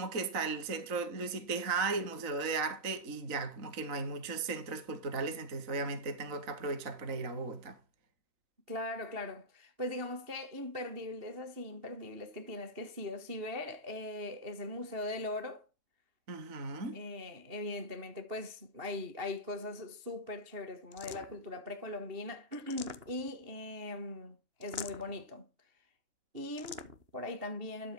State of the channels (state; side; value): late; left; 3.9 ms